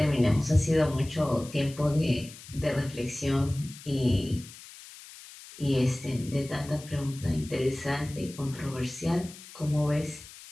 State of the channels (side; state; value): left; noise; hiss, 17 dB below the sound